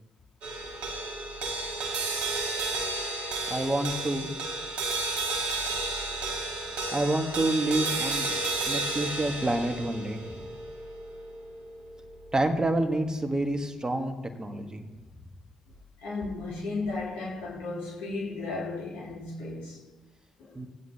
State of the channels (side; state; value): both; normal; correlation 0.66